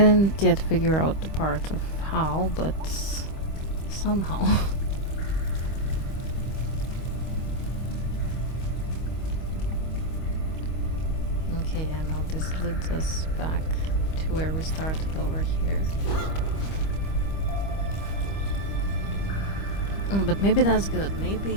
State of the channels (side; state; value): right; late; 25 ms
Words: yet figure out the part of how, but somehow. Okay, yeah, now this leads us back to where we started over here. But maybe that's good.